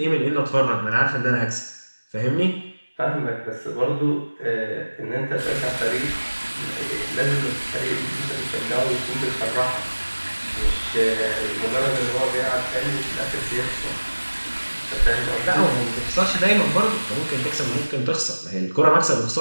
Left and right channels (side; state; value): both; inverted; correlation -1.00